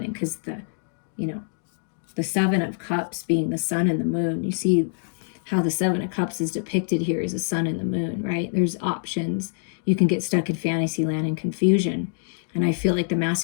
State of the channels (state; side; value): silent; right; digital silence